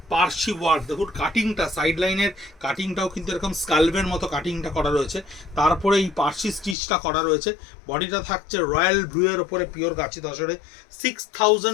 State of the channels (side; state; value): right; drops out; at 6.8 s